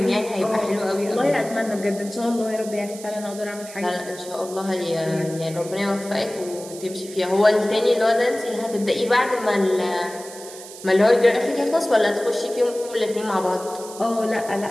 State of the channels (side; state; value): right; noise; hiss, 15 dB below the sound